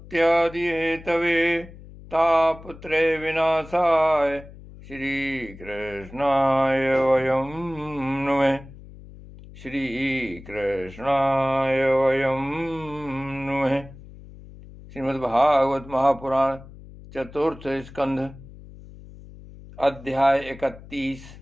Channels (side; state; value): left; noise; hum, 18 dB below the sound